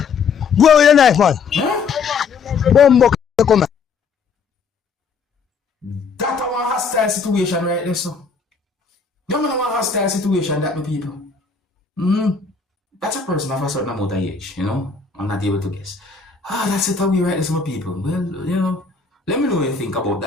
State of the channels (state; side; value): quieter; right; 5.3 dB